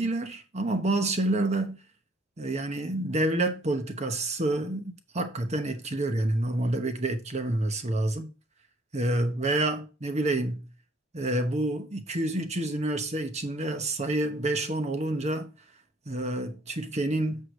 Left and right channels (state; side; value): normal; both; correlation 0.61